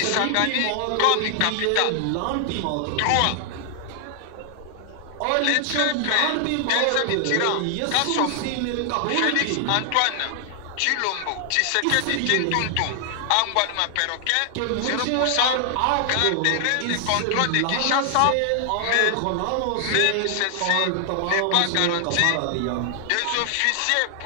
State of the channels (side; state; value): both; different; correlation 0.00